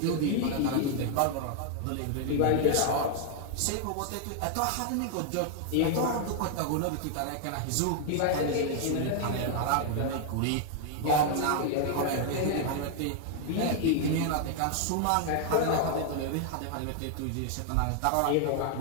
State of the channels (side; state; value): both; different; correlation 0.00